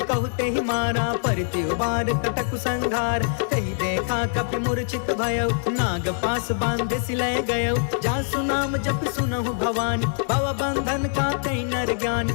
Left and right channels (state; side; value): silent; right; digital silence